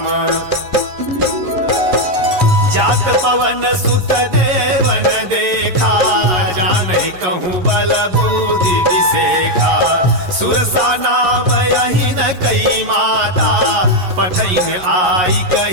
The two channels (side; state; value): left; late; 11 ms